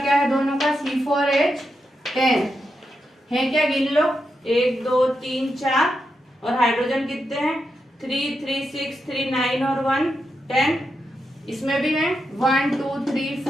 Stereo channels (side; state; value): both; normal; correlation 0.86